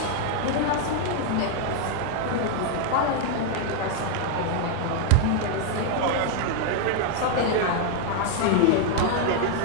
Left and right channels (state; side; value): different; both; correlation 0.00